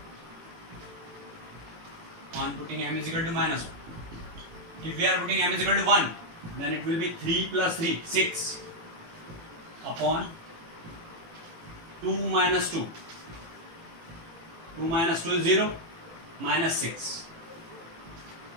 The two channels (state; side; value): late; left; 18 ms